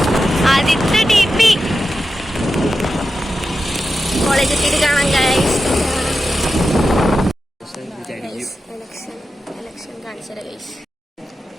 ആദിത്യ ടി പി കോളേജ് എത്തിയിട്ട് കാണാം ഗായ്സ്. എലക്ഷൻ കാണിച്ചത് ഗൈസ്.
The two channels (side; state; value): both; normal; correlation 0.91